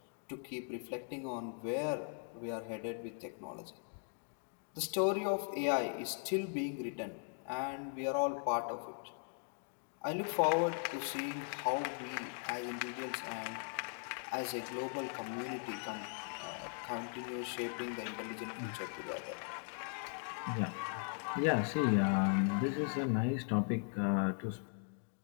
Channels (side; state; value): right; silent; 52 dB below the other